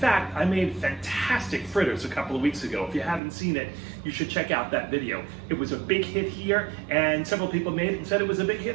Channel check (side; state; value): left; drops out; at 3.2 s